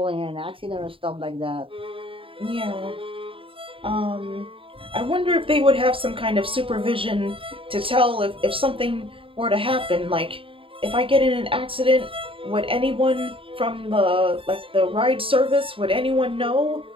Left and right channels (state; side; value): late; left; 0.26 ms